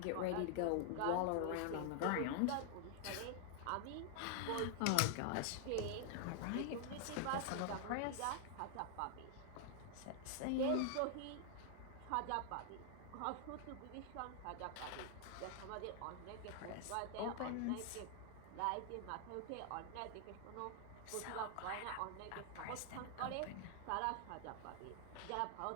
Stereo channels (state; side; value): different; both; correlation 0.00